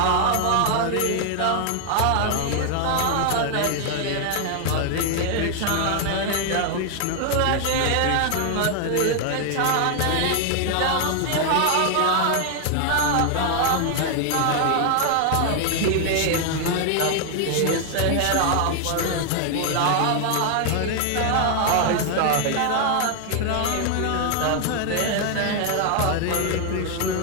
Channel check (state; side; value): different; both; correlation 0.00